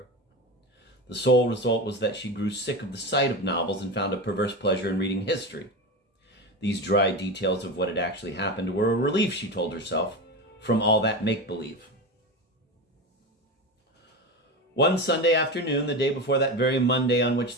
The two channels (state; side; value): normal; both; correlation 0.22